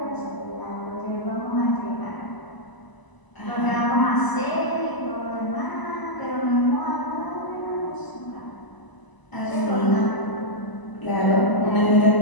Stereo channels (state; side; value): late; right; 1.0 ms